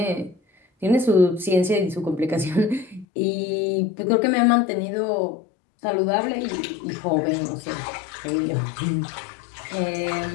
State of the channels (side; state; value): right; drops out; at 3.1 s